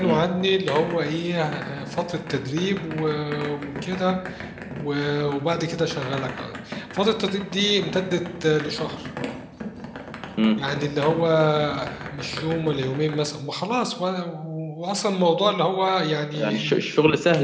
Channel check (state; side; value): identical; both; correlation 1.00